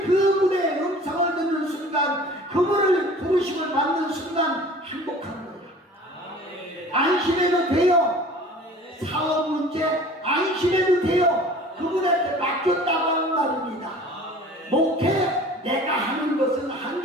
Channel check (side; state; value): both; normal; correlation 0.45